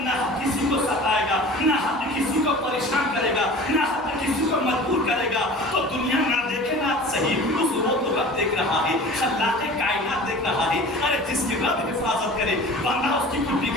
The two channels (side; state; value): both; normal; correlation 0.40